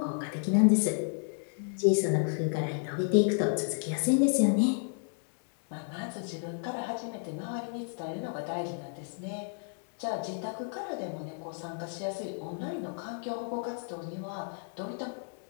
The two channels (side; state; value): right; silent; 56 dB below the other